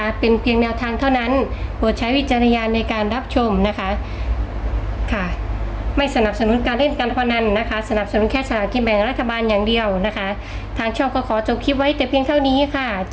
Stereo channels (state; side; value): identical; both; correlation 1.00